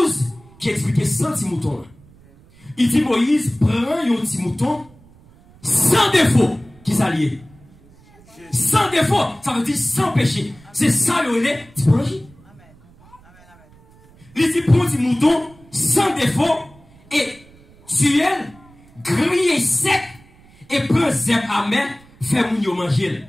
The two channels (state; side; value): noise; right; rumble, 27 dB below the sound